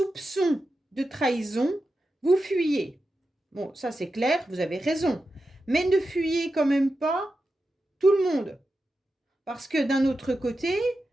de trahison, vous fuyez. Bon, ça c'est clair, vous avez raison. Mais ne fuyez quand même pas tout le monde. Parce que d'un autre côté,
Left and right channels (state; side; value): normal; both; correlation 0.90